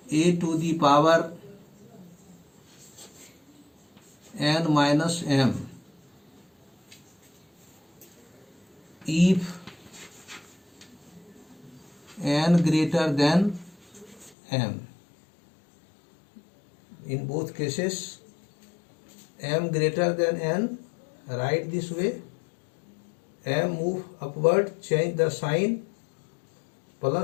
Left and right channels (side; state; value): right; drops out; at 14.3 s